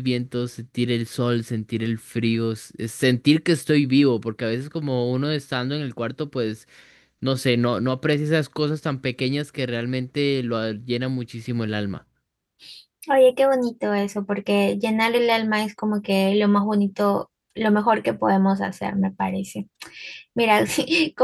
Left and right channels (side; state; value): both; identical; correlation 1.00